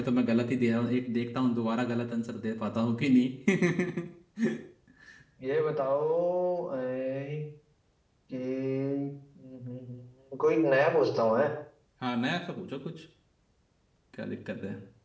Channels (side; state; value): both; identical; correlation 1.00